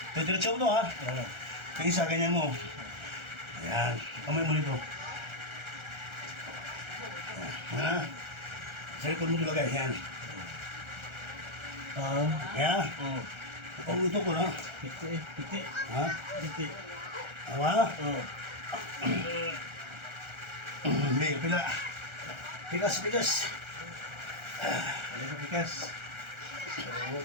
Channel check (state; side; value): late; left; 1.4 ms